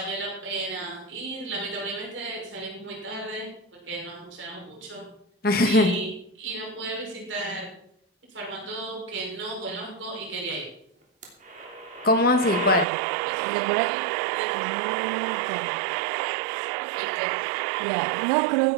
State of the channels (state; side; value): drops out; left; at 12.9 s